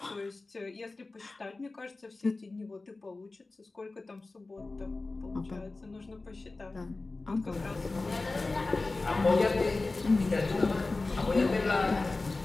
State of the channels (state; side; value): quieter; right; 3.4 dB